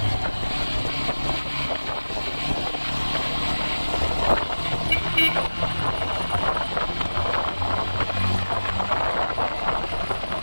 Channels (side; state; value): both; inverted; correlation -1.00